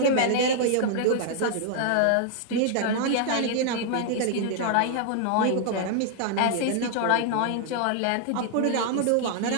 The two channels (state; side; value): different; both; correlation -0.01